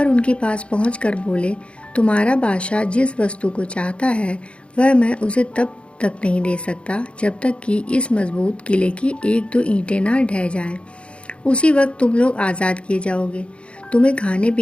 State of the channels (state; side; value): late; right; 0.059 ms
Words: उनके पास पहुंचकर बोले, तुम्हारा बादशाह जिस वस्तु को चाहता है वह मैं उसे तब तक नहीं दे सकता जब तक कि इस मजबूत किले की एक दो ईंटें ना ढह जाएं। उसी वक्त तुम लोग आज़ाद किए जाओगे। तुम्हें खाने